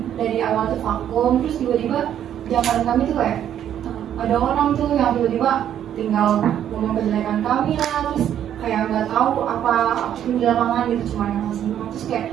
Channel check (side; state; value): left; quieter; 10.3 dB